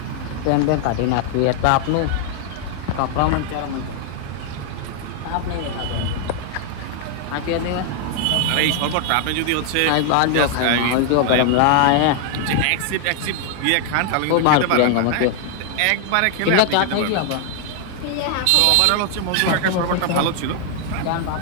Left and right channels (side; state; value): both; different; correlation 0.00